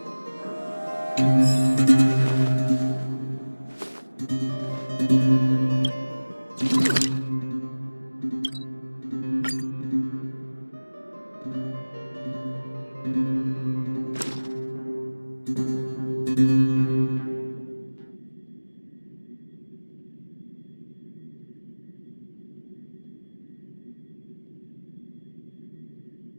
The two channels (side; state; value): both; inverted; correlation -1.00